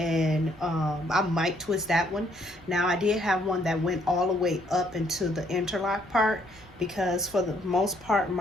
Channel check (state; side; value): normal; both; correlation 0.68